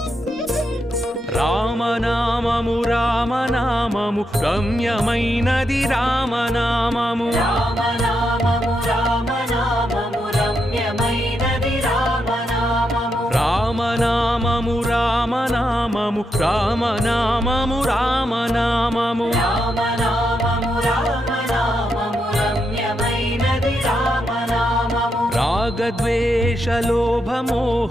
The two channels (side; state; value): both; normal; correlation 0.82